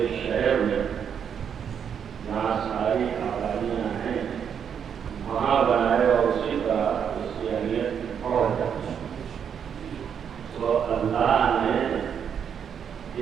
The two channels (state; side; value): quieter; left; 7.8 dB